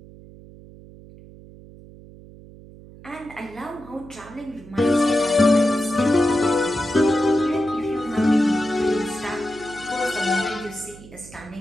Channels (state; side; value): noise; right; hum, 19 dB below the sound